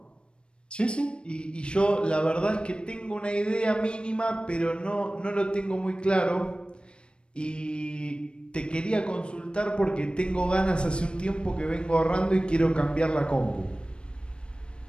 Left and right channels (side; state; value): right; late; 0.055 ms